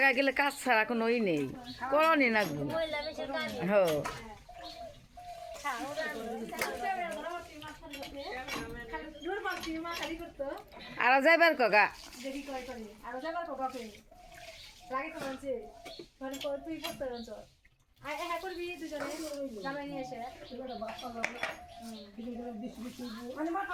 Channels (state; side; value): identical; both; correlation 1.00